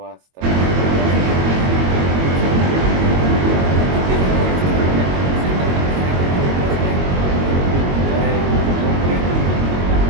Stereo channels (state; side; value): late; left; 22 ms